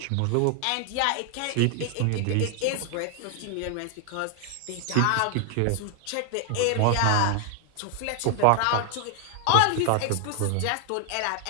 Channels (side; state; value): both; different; correlation 0.00